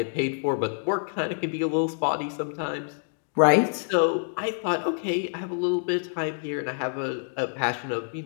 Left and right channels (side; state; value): right; silent; digital silence